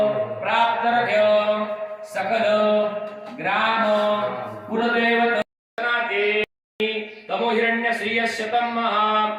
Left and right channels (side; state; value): both; identical; correlation 1.00